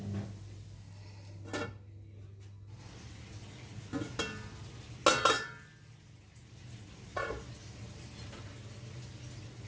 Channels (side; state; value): both; identical; correlation 1.00